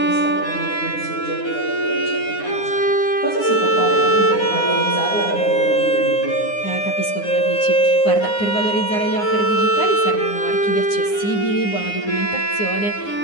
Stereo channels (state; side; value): late; right; 9.7 ms